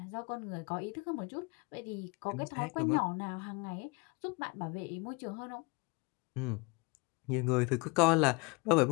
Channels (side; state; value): right; quieter; 27.8 dB